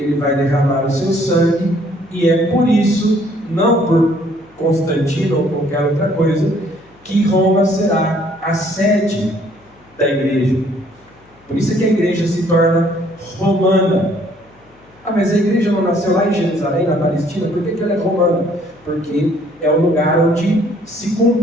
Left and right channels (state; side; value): noise; left; hum, 30 dB below the sound